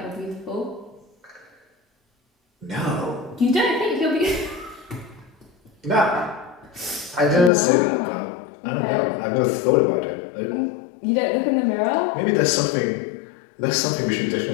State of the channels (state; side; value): drops out; right; at 7.5 s